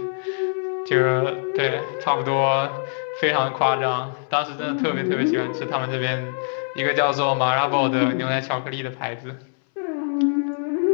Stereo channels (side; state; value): right; silent; 63 dB below the other